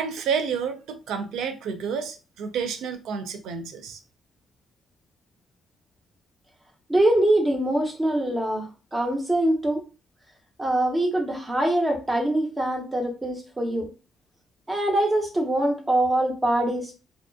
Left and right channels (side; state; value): both; normal; correlation 0.84